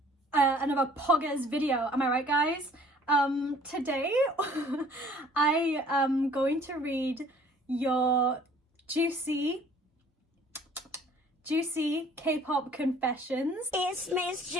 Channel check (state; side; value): normal; both; correlation 0.54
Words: poggers video. Am I right, guys? Today I am going to read your juicy K-pop confessions. It's Miss